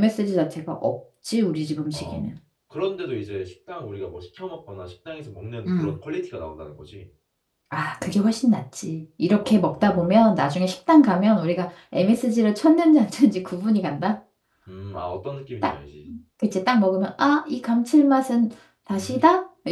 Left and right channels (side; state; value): both; identical; correlation 1.00